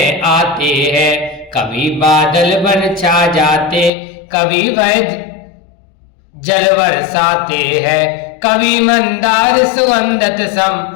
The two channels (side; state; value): right; drops out; at 3.9 s